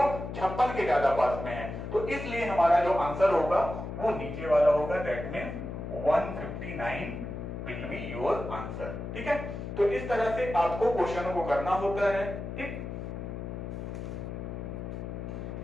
के ज्यादा पास में है, तो इसलिए हमारा जो आंसर होगा वो नीचे वाला होगा, that means 159 will be your answer. ठीक है, तो इस तरह से आपको क्वेश्चनों को करना होता है। ठीक,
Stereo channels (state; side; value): noise; left; hum, 7 dB below the sound